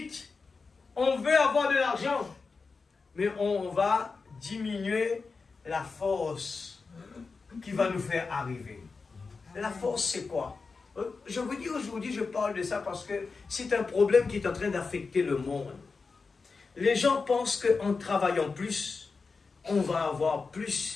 on veut avoir de l'argent, mais on va diminuer la force qui va nous faire arriver. La force, c'est quoi? Je vous dis aujourd'hui, je parle de ça parce que c'est un problème qui est en train d'affecter le monde. Les gens pensent qu'en travaillant plus, on va avoir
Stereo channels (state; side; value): quieter; right; 4.5 dB